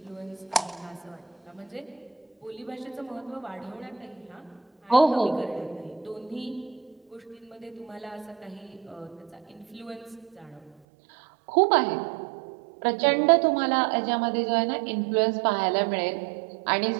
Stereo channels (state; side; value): drops out; left; at 10.7 s